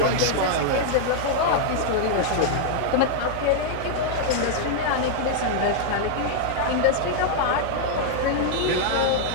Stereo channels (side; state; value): both; different; correlation -0.01